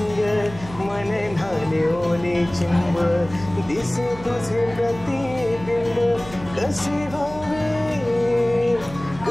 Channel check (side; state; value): right; noise; hum, 15 dB below the sound